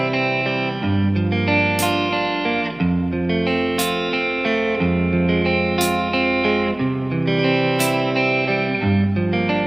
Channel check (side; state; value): left; noise; hum, 26 dB below the sound